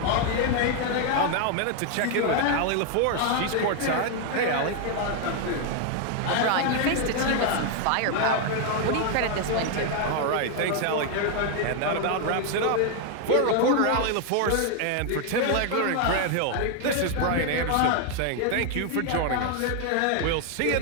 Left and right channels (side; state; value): both; different; correlation 0.00